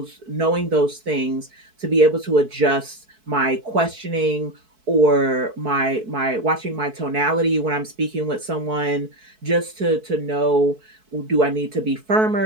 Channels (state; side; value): late; left; 4.6 ms